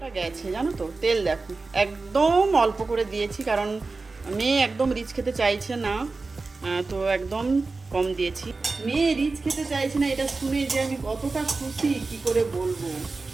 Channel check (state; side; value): quieter; left; 3.8 dB